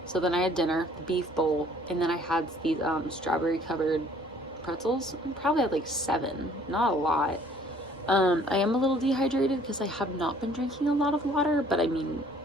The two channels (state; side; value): normal; both; correlation 0.57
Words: so then I had dinner, the beef bowl, and then I had these strawberry covered pretzels. I probably had like 7, not a lot. I am a little dehydrated because I have not been drinking a lot of water, but I mean,